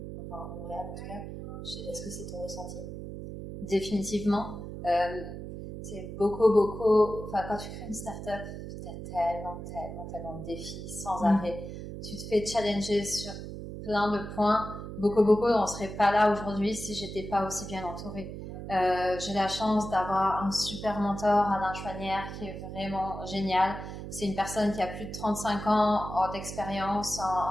enfin à Montréal en tout cas. Est-ce que c'est ton ressenti? Définitivement. C'est beaucoup. Enfin, quand tu crées une start-up, t'as tellement de défis sans arrêt. Tu te fais challenger sur plein de points. Boko Boko, on serait pas là aujourd'hui si j'étais pas aussi bien entourée. J'ai la chance d'avoir un super mentor, Alain Chouanière, qui est vraiment génial. C'est une personne qui a plus de 35 ans d'expérience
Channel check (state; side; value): noise; right; hum, 9 dB below the sound